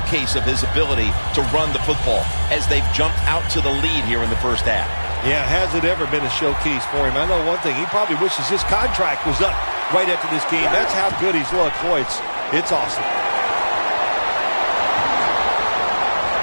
of his ability to run the football as they've jumped out to the lead here in the first half. Yeah, has it ever been a showcase for him? I know one thing, he probably wishes his contract was up right after this game. That's how good he's looked. Boy, it's awesome.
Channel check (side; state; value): both; inverted; correlation -1.00